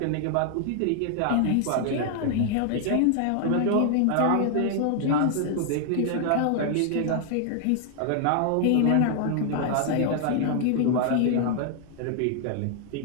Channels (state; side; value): different; both; correlation 0.00